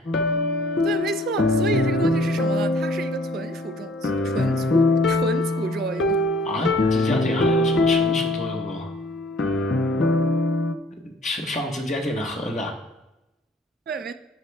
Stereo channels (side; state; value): both; normal; correlation 0.56